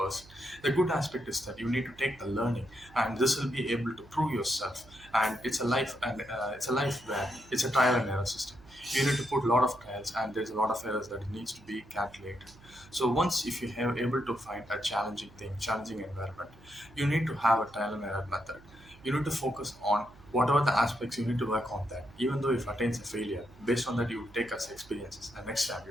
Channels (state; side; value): noise; right; hum, 23 dB below the sound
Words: The good aspect is that you need to take the learning, and this will be able to prove yourself. And it's a life where it's a trial and error system. You need to put a lot of trials, and there's a lot of errors that needs to be calculated. So once if you have able to find a challenging thing, challenging environment, you need to have a trial and error method. You need to focus on whatever the aspects, you need to work on that. Even though if attains a failure, based on that you take as experiences, and next time